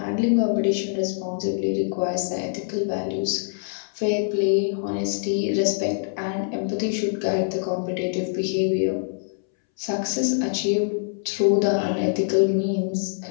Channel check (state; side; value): silent; right; 62 dB below the other